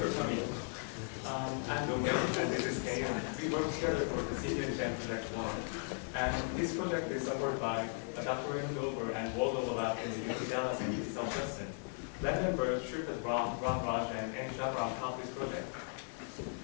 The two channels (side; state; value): right; silent; 53 dB below the other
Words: for coming. I'm Dong and this is Kay. We work together for the Senior Design Project 1. And this project is supported by Dr. Dover and Waldo Lab in the UC Dallas and UC South Boston. Lab members Shripad Ram, Raj, and Shahram helped this project.